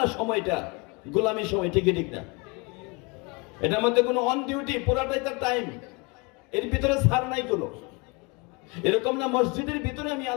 সময়টা গোলামী সময়, ঠিক ঠিক না? এটার মধ্যে কোনো অন ডিউটি, পুরাটাই তার টাইম, এর ভিতরে ছাড় নাই কোনো। এরকম না মসজিদের ভিতরে আমি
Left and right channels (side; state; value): right; quieter; 28.8 dB